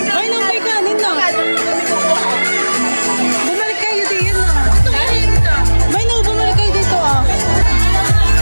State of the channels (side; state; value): both; inverted; correlation -1.00